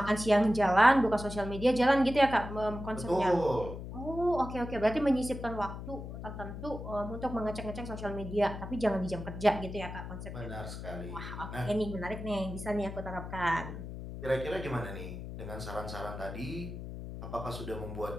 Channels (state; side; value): noise; left; hum, 9 dB below the sound